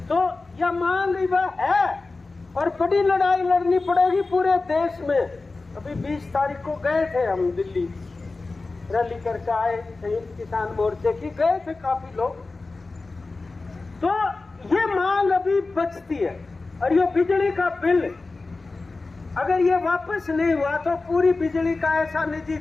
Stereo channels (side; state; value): right; quieter; 3.6 dB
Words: तो यह मांग वह है और बड़ी लड़ाई लड़नी पड़ेगी पूरे देश में। अभी 20 तारीख को गए थे हम दिल्ली, रैली करके आए, संयुक्त किसान मोर्चे की, गए थे काफी लोग। तो ये मांग अभी बचती है। और ये बिजली का बिल अगर ये वापस नहीं हुआ तो पूरी बिजली का ऐसा